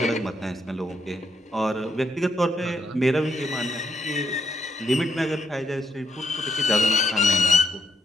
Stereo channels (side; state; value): both; normal; correlation 0.75